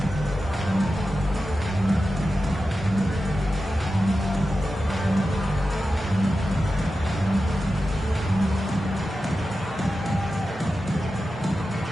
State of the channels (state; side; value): normal; both; correlation 0.92